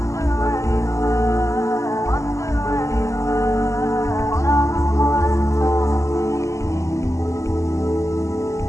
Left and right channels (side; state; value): right; late; 0.15 ms